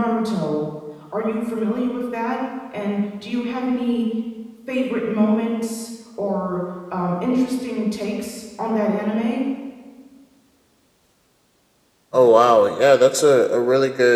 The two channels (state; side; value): identical; both; correlation 1.00